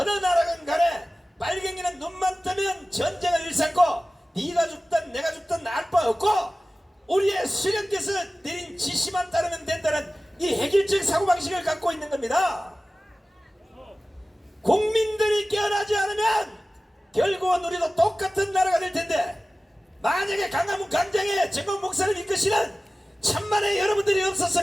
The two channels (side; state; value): both; normal; correlation 0.97